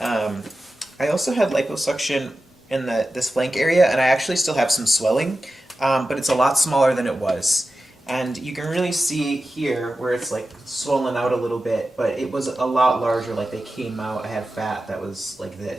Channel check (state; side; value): normal; both; correlation 0.93